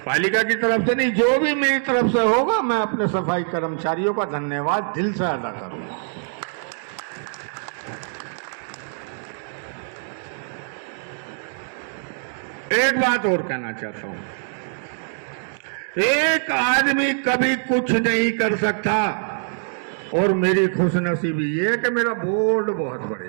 पालिका की तरफ से नहीं, जो भी मेरी तरफ से होगा, मैं अपने सफाई कर्मचारियों का धन्यवाद दिल से अदा करूंगा। एक बात और कहना चाहता हूं, एक आदमी कभी कुछ नहीं कर सकता, और मेरी खुशनसीबी ये है कि मेरा बोर्ड बहुत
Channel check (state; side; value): silent; left; digital silence